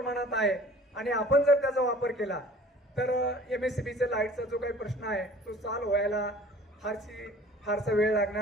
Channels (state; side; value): normal; both; correlation 0.48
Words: आहे आणि आपण जर त्याचा वापर केला तर MSCBच्या लाईटचा जो काही प्रश्न आहे तो सॉल्व्ह व्हायला फारसा वेळ